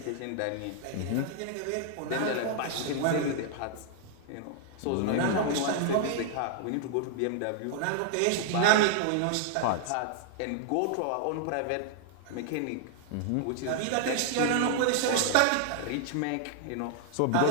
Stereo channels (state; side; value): different; both; correlation -0.01